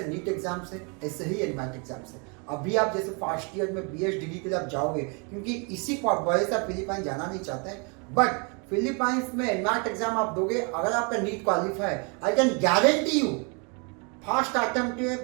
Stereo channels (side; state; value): left; quieter; 34.3 dB